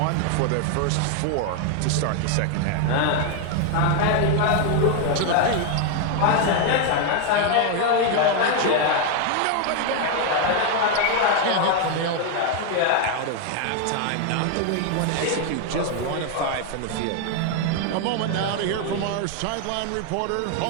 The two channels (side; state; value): both; different; correlation 0.01